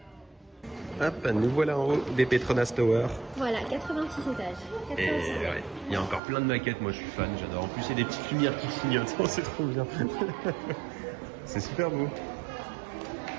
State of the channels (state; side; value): drops out; left; at 6.2 s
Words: Hop, nous voilà en haut des Petronas Tower. Voilà, 86 étages. 86 Et ouais, il y a encore plein de maquettes, moi je suis fan, j'adore. En plus, il y a des petites lumières qui clignotent, c'est trop bien. C'est super beau.